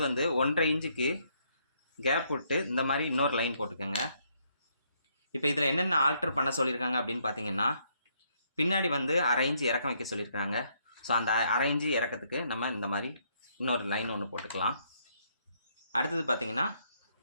வந்து 1.5 இன்ச்சுக்கு கேப் விட்டு இந்த மாதிரி இன்னொரு லைன் போட்டுக்கோங்க. இப்போ இதில் என்னென்ன ஆல்டர் பண்ண சொல்லியிருக்காங்க அப்படின்னு பார்த்தீங்கன்னா, பின்னாடி வந்து 1/2 இன்ச்சு இறக்கம் வைக்க சொல்லியிருக்காங்க. ஸோ அந்த 1/2 இன்ச்சு இறக்கத்துக்கு நம்ம இந்த மாதிரி இன்னொரு லைன் ஒன்று போட்டுக்கலாம். அடுத்தது பார்த்தீங்கன்னா,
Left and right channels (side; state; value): both; inverted; correlation -0.71